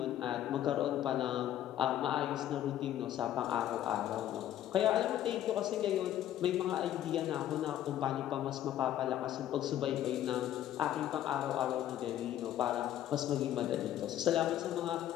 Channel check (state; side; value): quieter; right; 12.0 dB